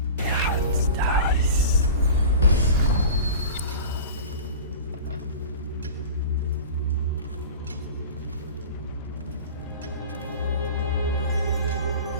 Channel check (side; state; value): both; inverted; correlation -0.35